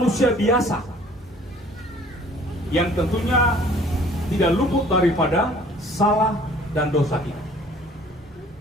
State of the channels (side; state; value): both; normal; correlation 0.53